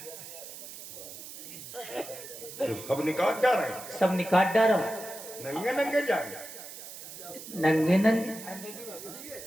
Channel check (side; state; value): right; noise; hiss, 12 dB below the sound